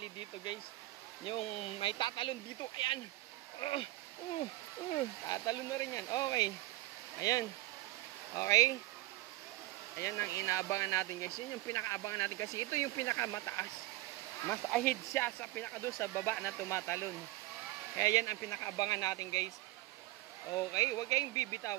dito guys. Yung may tatalon dito. Ayan. Tatalon na rin yan. Okay. Ayan. Okay. Ayan ang inaabangan natin guys. Yun yung pinakaabangan natin kasi ito yung pinakamataas. Mas ahead siya sa pinakadoon sa baba na tumatalon. Kaya yan ang pinakaabangan natin guys. Okay. Huwag kayong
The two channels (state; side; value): quieter; left; 18.8 dB